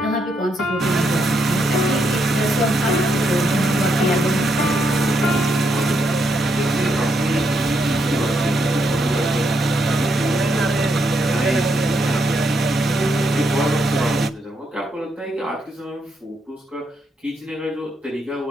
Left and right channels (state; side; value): normal; both; correlation 0.78